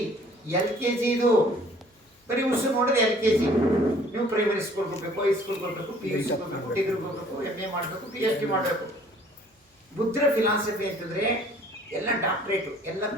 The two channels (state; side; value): normal; both; correlation 0.55